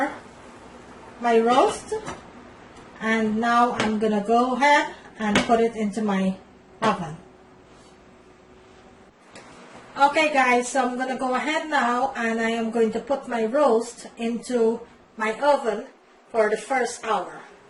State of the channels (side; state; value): both; identical; correlation 1.00